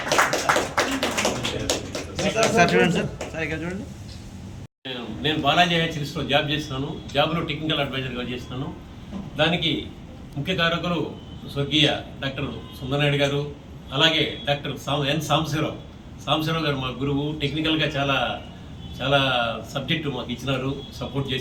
సార్ చూడండి సార్. సార్ ఇక్కడ చూడండి. నేను బాలాజీ హెచ్ఎస్లో జాబ్ చేస్తున్నాను. జాబ్లో టెక్నికల్ అడ్వైజర్గా చేస్తున్నాను. దానికి ముఖ్య కారకులు స్వర్గీయ డాక్టర్ సుందరనాయుడు గారు, అలాగే డాక్టర్ ఎన్ సాంబశివరావు గారు మా గురువు. టెక్నికల్గా చాలా చాలా సబ్జెక్టు మాకు ఇచ్చినారు, సపోర్ట్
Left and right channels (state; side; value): identical; both; correlation 1.00